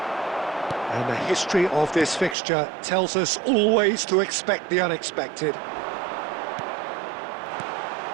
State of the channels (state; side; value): drops out; left; at 2.4 s